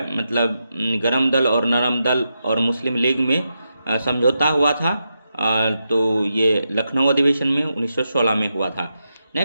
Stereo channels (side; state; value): both; inverted; correlation -0.86